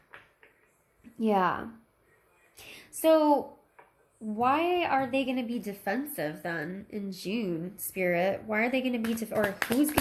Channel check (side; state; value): both; identical; correlation 1.00